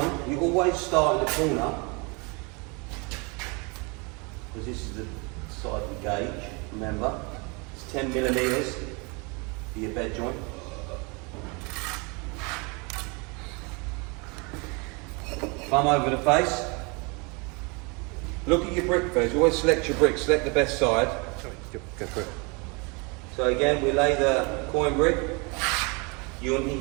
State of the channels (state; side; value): quieter; left; 30.5 dB